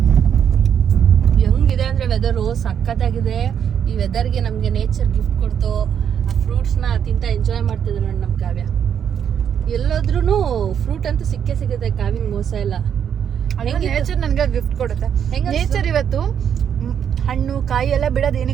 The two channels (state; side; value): quieter; left; 8.4 dB